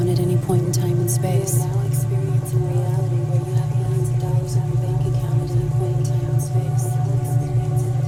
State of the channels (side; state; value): both; identical; correlation 1.00